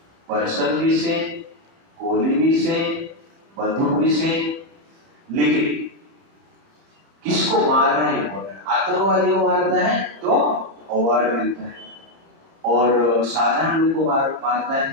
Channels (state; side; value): late; left; 30 ms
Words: पर्सन भी से, गोली भी से, बंदूक भी से, लेकिन किसको मार रहा है इम्पोर्टेंट। आतंकवादी को मारता है तो अवार्ड मिलता है, और साधारण लोगों को मारता है